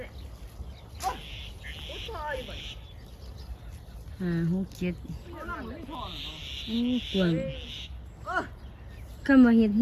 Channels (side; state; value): both; identical; correlation 1.00